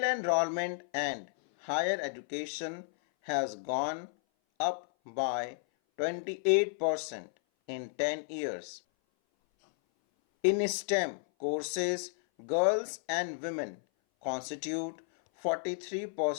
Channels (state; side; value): silent; right; 56 dB below the other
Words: enrollment and higher education has gone up by 28% in 10 years. In STEM courses, girls and women constitute